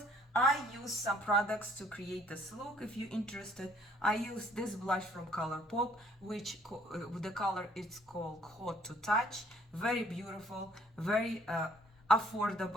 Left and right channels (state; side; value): normal; both; correlation 0.62